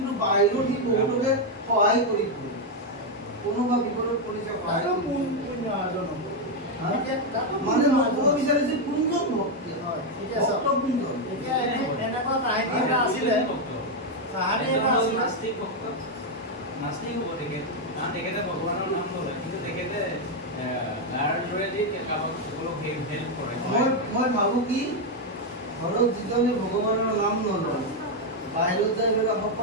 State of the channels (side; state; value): both; normal; correlation 0.03